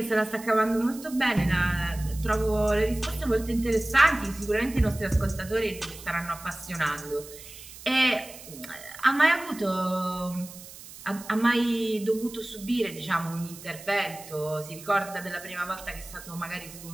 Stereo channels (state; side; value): noise; right; hiss, 16 dB below the sound